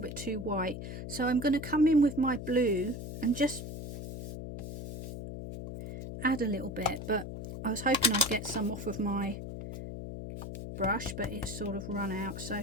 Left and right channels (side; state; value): left; noise; hum, 7 dB below the sound